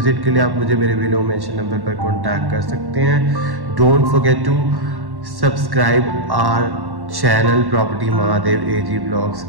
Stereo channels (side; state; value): left; late; 1.1 ms